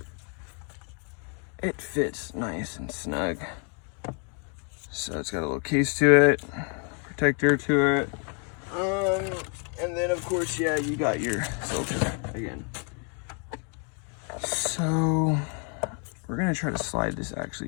it fits nice and snug. So it's got a little case to it, protector to it. And then of course, yeah, you got your filter again. So we're gonna try to slide this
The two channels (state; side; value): quieter; right; 39.7 dB